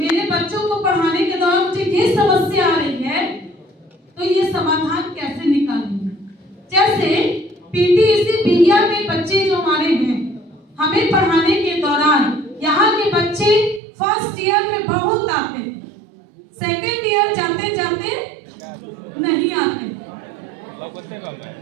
बच्चों को पढ़ाने के दौरान मुझे ये समस्या आ रही है तो ये समाधान कैसे निकालेंगे। जैसे पीटीईसी बिहिया में बच्चे जो हमारे हैं, हमें पढ़ाने के दौरान यहाँ के बच्चे फर्स्ट ईयर में बहुत आते हैं, सेकेंड ईयर जाते जाते नहीं आते।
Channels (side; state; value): left; drops out; at 13.8 s